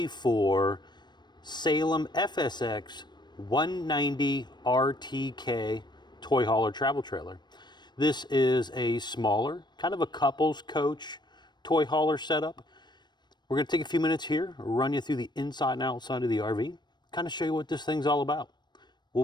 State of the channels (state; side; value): late; right; 0.21 ms